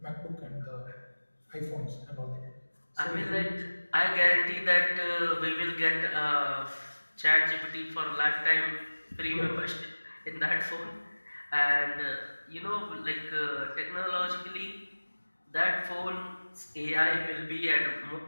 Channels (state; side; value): inverted; both; correlation -1.00